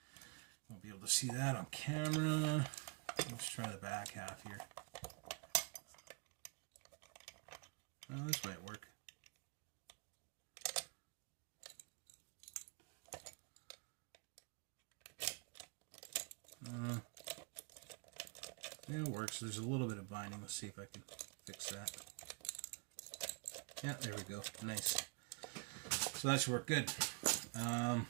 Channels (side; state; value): left; quieter; 30.6 dB